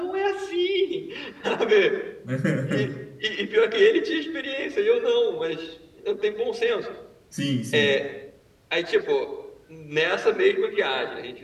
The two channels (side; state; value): both; identical; correlation 1.00